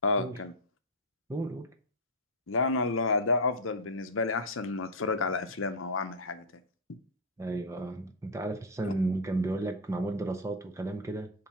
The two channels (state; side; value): normal; both; correlation -0.04